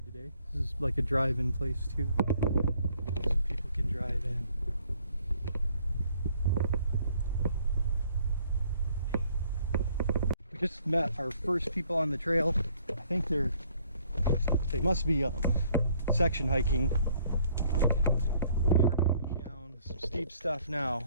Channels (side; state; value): both; inverted; correlation -0.62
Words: today. This is like a drive-in place too. So people can drive in. Just met our first people on the trail. I think they must be section hiking. We are going down some steep stuff